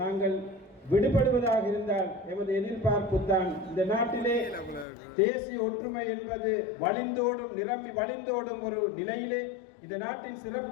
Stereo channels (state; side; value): drops out; right; at 4.9 s